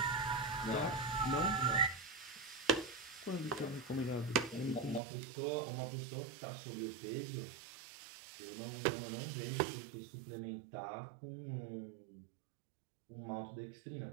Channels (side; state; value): left; drops out; at 5.0 s